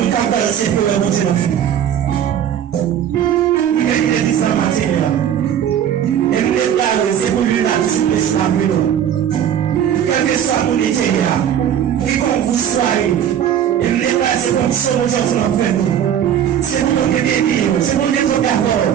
cas, c'est pour le monter la vie. Il est dit ça matin. Et maintenant, c'est pour lui la souplesse la vie. Quel que soit mon idée, qui comme vous soyez, et maintenant, c'est comme ça que nous avons fait. C'est pour nous bénir, c'est pour nous d'accord.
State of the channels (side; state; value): left; quieter; 9.6 dB